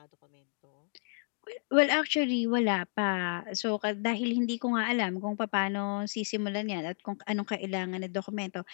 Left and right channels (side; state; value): right; silent; 57 dB below the other